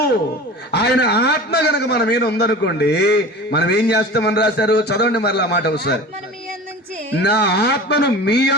ఆయన ఆత్మ గనక మన మీద ఉందనుకోండి, మనం ఏం చేస్తామని రాశారు? చదవండి మరలా మాట ఒకసారి. నా ఆత్మను మీ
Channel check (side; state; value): both; normal; correlation 0.35